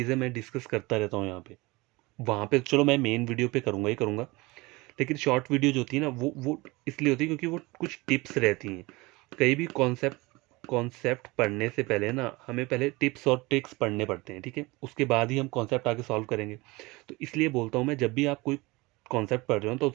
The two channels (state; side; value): quieter; left; 23.1 dB